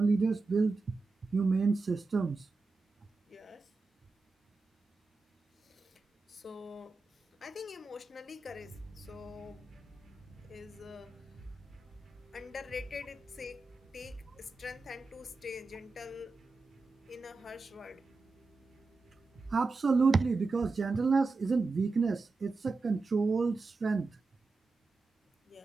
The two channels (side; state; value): left; quieter; 3.8 dB